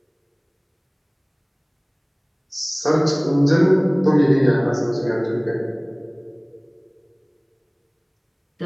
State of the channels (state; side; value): identical; both; correlation 1.00